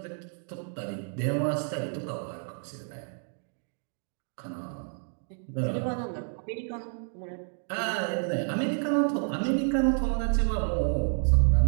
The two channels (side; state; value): left; silent; 58 dB below the other